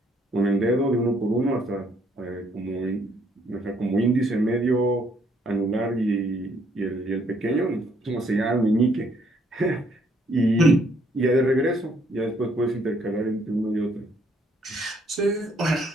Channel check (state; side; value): normal; both; correlation 0.68